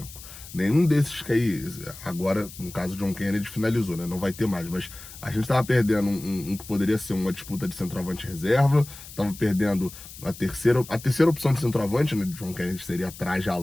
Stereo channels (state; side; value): noise; left; hiss, 16 dB below the sound